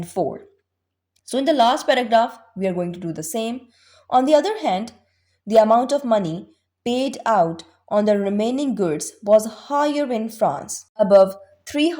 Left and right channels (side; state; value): both; identical; correlation 1.00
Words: 4. So in the last paragraph, we are going to do the same. On the other hand, the amount of money paid out on the remaining goods was higher in France. Above